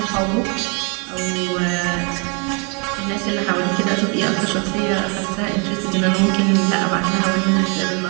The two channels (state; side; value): quieter; left; 34.1 dB